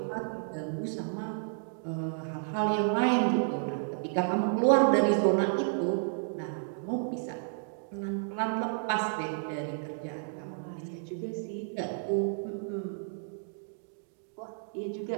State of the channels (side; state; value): left; silent; digital silence